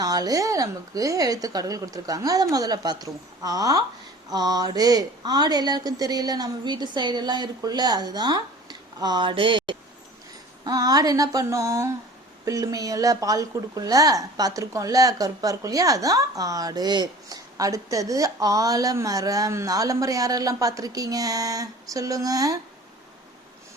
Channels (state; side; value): normal; both; correlation 0.44